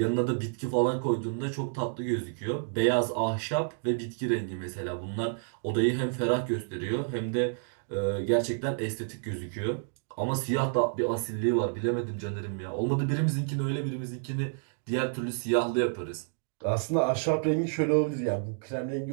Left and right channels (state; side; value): silent; left; digital silence